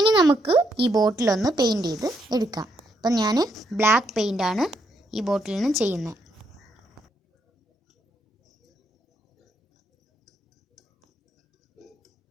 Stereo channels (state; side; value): normal; both; correlation 0.76